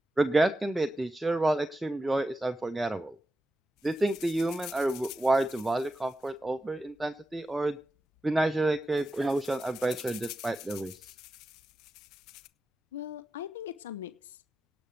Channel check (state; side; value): normal; both; correlation 0.91